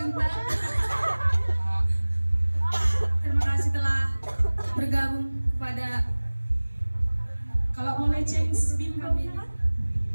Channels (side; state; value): both; inverted; correlation -1.00